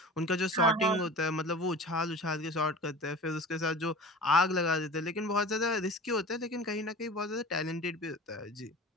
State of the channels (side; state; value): both; normal; correlation 0.38